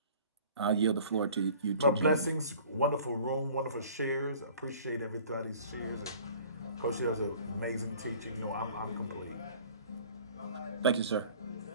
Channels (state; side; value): inverted; both; correlation -0.49